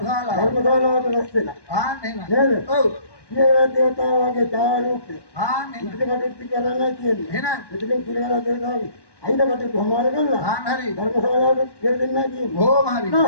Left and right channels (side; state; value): right; late; 1.1 ms